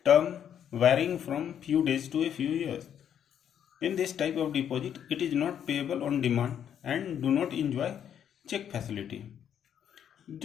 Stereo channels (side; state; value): right; quieter; 9.2 dB